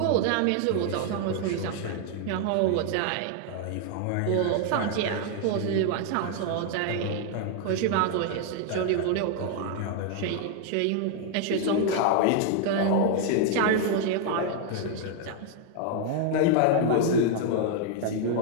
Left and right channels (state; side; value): different; both; correlation 0.00